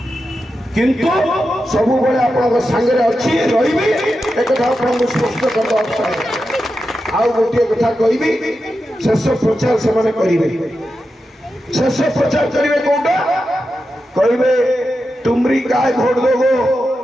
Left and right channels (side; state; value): both; normal; correlation 0.89